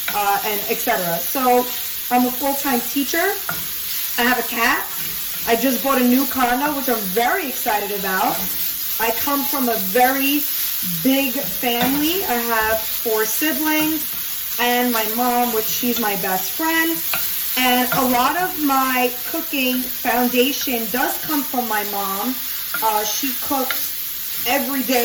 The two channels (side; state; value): right; noise; hum, 28 dB below the sound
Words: and etc. So I'm a full-time teacher. I have a cat. I just bought a new condo, which I'm very excited about. I come from a very big family. I have 4 siblings and my mom, which she's my best friend. And a lot of my cooking foundation does come from my mom. She cooks every